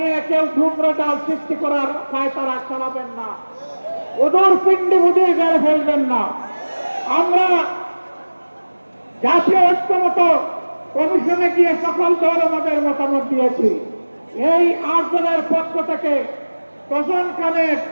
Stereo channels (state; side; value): inverted; both; correlation -1.00